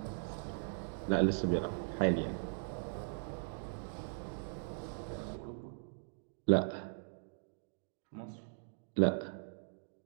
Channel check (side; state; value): left; silent; digital silence